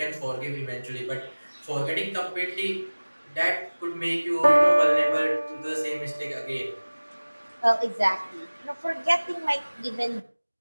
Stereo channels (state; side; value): inverted; both; correlation -1.00